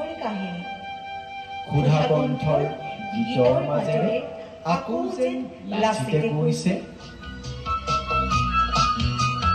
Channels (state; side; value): identical; both; correlation 1.00